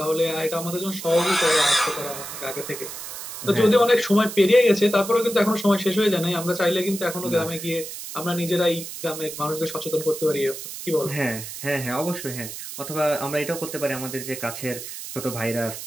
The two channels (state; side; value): noise; right; hiss, 9 dB below the sound